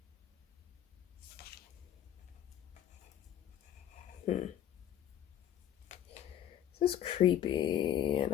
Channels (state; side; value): quieter; right; 10.8 dB